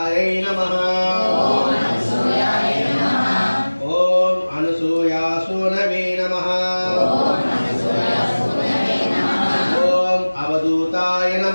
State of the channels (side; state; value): both; inverted; correlation -1.00